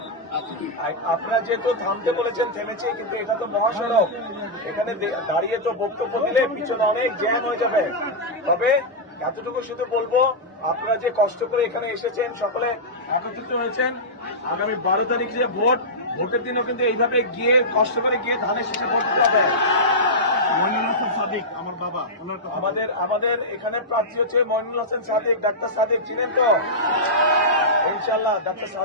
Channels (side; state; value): both; normal; correlation -0.11